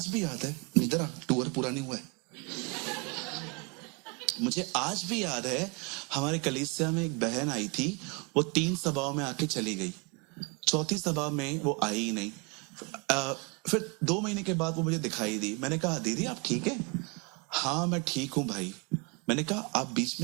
भी याद है, इधर टूर पूरा नहीं हुआ है, मुझे आज भी याद है, हमारे कलीसिया में एक बहन आई थी, वो 3 सभाओं में आके चली गई, 4थी सभा में वो आई ही नहीं। फिर 2 महीने के बाद वो मुझे दिखाई दी। मैंने कहा, दीदी आप ठीक है? हाँ मैं ठीक हूं भाई, मैंने कहा आप बीच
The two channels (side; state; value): left; quieter; 30.7 dB